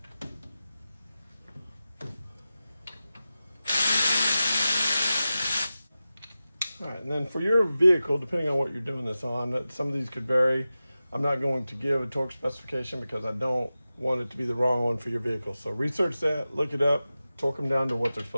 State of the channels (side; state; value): both; inverted; correlation -0.94